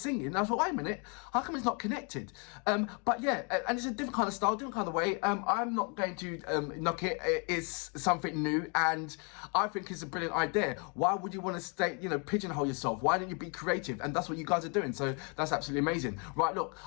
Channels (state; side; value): quieter; right; 35.6 dB